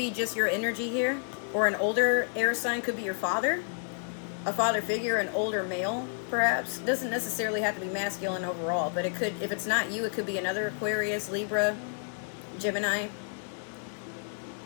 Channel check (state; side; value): silent; right; digital silence